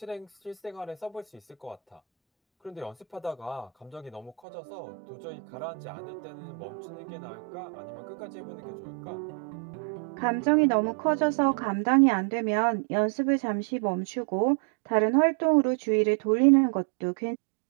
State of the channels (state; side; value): drops out; left; at 4.4 s